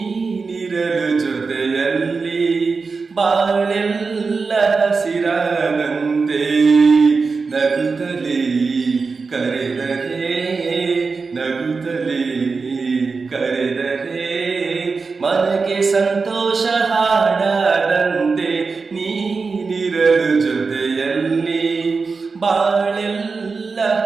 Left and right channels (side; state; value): left; quieter; 4.5 dB